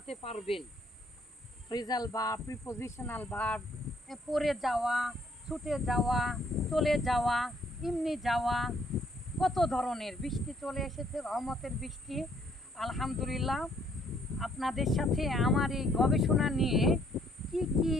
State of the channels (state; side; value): normal; both; correlation 0.66